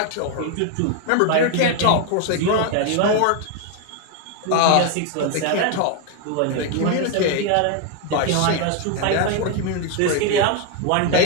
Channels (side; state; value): both; different; correlation 0.01